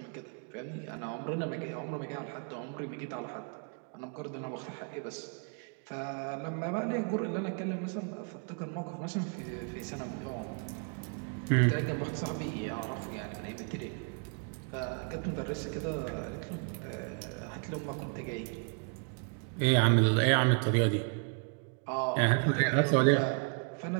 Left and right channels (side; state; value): left; quieter; 39.9 dB